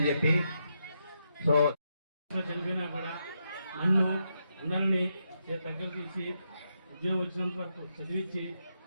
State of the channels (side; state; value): both; inverted; correlation -0.82